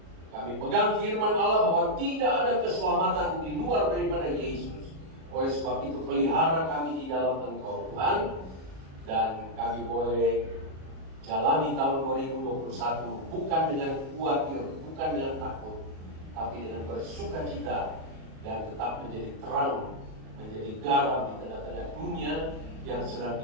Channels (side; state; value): left; late; 37 ms